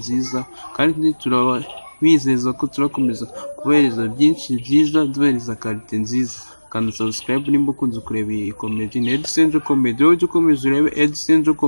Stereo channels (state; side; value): inverted; both; correlation -1.00